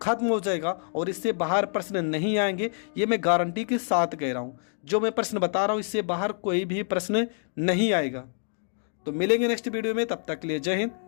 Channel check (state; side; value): silent; right; digital silence